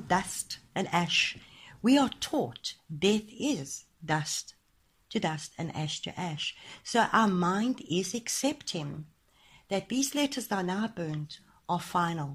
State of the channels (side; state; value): both; identical; correlation 1.00